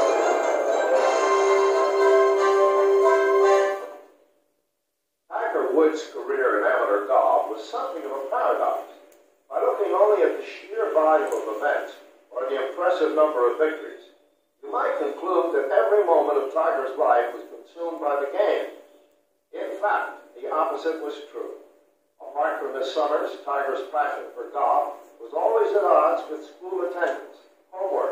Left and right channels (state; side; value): identical; both; correlation 1.00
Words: Woods' career in amateur golf was something of a paradox. By looking only at the sheer volume of events or the impressive number of victories, you might conclude that every moment of Tiger's life was consumed by the game. In fact, the opposite was true. Apart from his summers, Tiger's passion for golf was always at odds with school attendance,